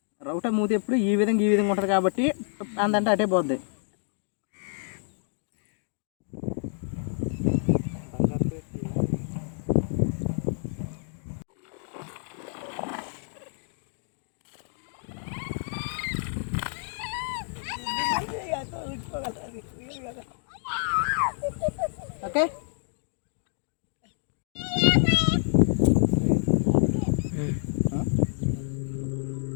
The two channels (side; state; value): right; silent; digital silence